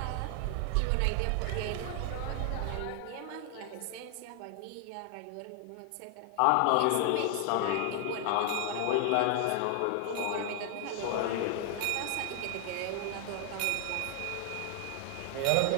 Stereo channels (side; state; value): both; different; correlation 0.00